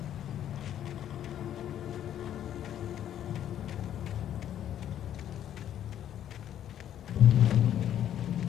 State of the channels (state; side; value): quieter; right; 10.7 dB